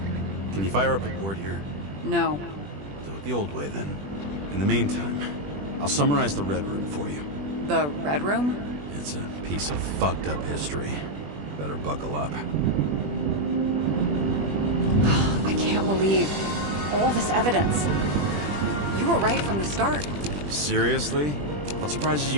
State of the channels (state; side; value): late; left; 20 ms